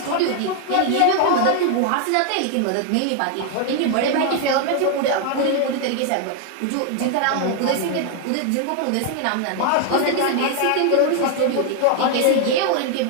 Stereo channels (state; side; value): different; both; correlation 0.00